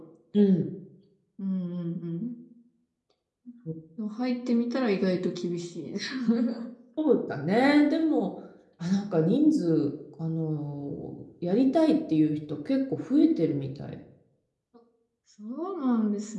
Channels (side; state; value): both; identical; correlation 1.00